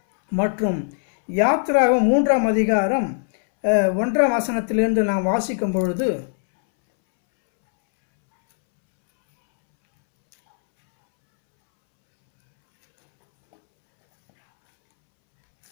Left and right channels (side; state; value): right; silent; 66 dB below the other